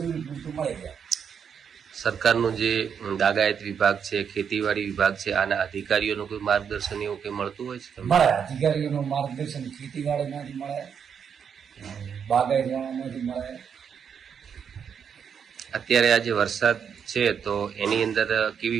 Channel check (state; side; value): quieter; left; 7.3 dB